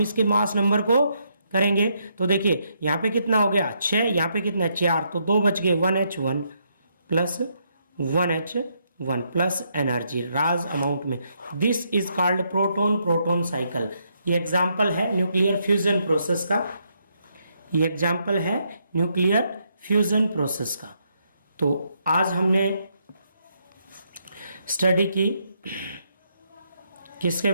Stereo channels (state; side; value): inverted; both; correlation -0.76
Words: इसके मास नंबर को करेंगे तो देखिए यहां पे कितना हो गया 6, यहां पे कितना 4, तो 2 बच गए 1H1 plus 1H1 plus energy राज अमाउंट में। This is called proton proton cycle. ये एग्जाम्पल है न्यूक्लियर फ्यूजन प्रोसेस का, ये एग्जाम्पल है न्यूक्लियर फ्यूजन प्रोसेस का। तो आज हमने स्टडी की किसके